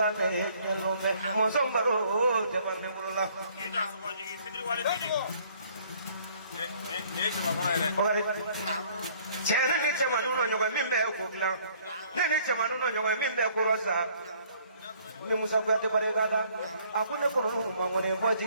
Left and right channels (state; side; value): inverted; both; correlation -0.60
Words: ne nyelo be. Mosong baro te mande mulola. Inda soma jigi sidri wale didi. Ne chema kona ile. Ogare. Chere ne chema nuno nyoga mimbe ko gla. Ne chema nuno nyoga mimbe ko rosa. ni musa kuyate barikada aku ne kono mangone bo